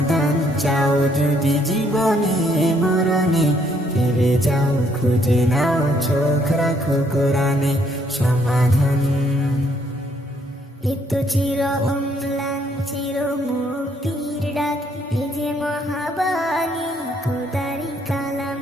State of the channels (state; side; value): normal; both; correlation 0.69